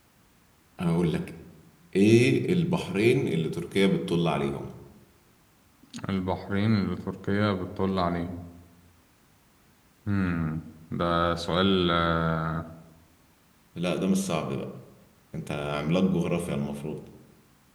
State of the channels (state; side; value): identical; both; correlation 1.00